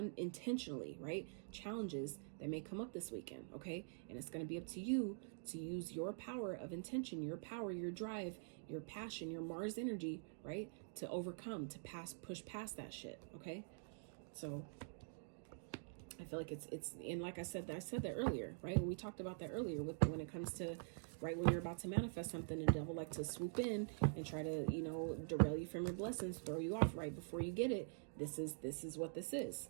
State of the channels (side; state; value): left; silent; digital silence